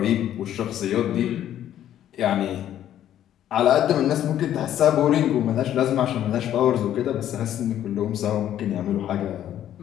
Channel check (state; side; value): quieter; right; 11.3 dB